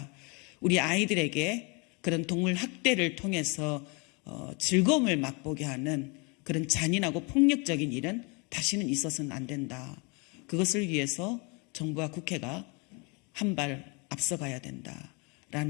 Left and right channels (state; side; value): quieter; right; 31.1 dB